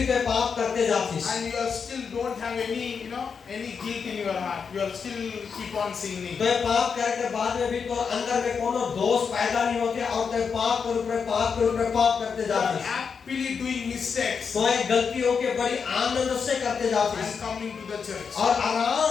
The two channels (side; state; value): right; quieter; 6.0 dB